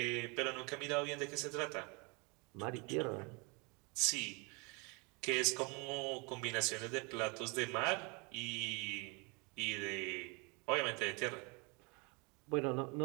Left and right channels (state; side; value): quieter; left; 30.4 dB